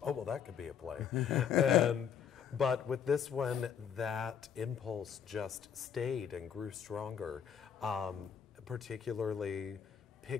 oh, well, that could be a play. But with this one, that impulse just stayed and grew stronger, particularly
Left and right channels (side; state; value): right; quieter; 7.8 dB